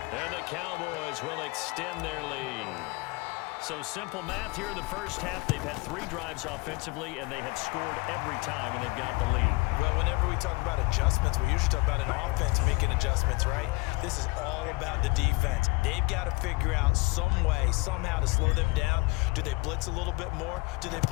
And the Cowboys will extend their lead. So simple math here in the first half. They've had 3 drives offensively, and they have scored every time, and they've got the lead. Well, whenever we talk about adjustments, we usually talk about an offense making adjustments, right? This is all about the defense. They've got to figure out some way, somehow to slow them down. Do they blitz a little bit more? Do they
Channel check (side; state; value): right; quieter; 24.8 dB